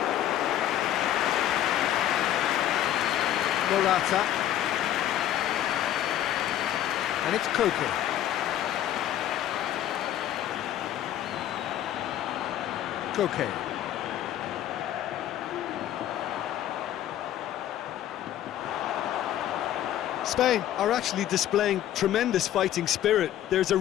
Morata. And it's Koke. Koke. Spain are actually displaying tremendous fighting spirit. There's a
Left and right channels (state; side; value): quieter; right; 11.9 dB